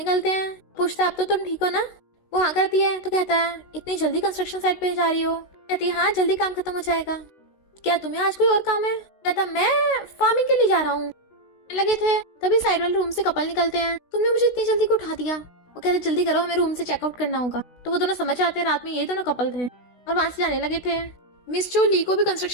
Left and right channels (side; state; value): right; late; 16 ms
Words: हैं। पूछता है अब तो तुम ठीक हो ना। वो हाँ करती है तो कहता है इतनी जल्दी कंस्ट्रक्शन साइट पे जा रही हो। कहती है हाँ जल्दी काम खत्म हो जाएगा, क्या तुम्हें आज कोई और काम है। कहता मैं फार्मिंग के लिए जा रहा हूँ। लगे थे तभी साइड वाले रूम से कपल निकलते हैं, तुमने मुझे इतनी जल्दी को उठा दिया। वो कहते जल्दी करो हमें रूम से चेकआउट करना होगा। तो वो दोनों समझ जाते हैं रात में ये दोनों कपल थे और वहां से जाने लगे थे। मिस चो ली को भी